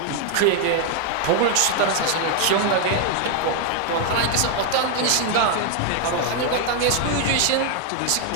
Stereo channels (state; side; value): different; both; correlation 0.00